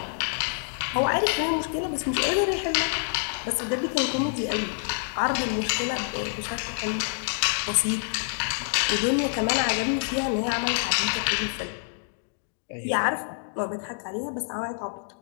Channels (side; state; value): right; silent; digital silence